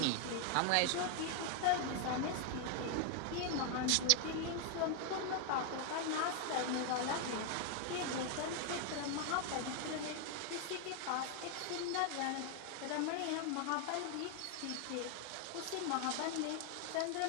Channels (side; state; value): both; different; correlation 0.00